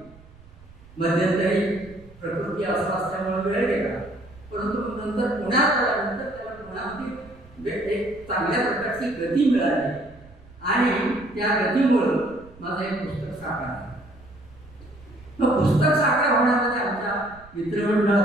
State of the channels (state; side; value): noise; right; rumble, 23 dB below the sound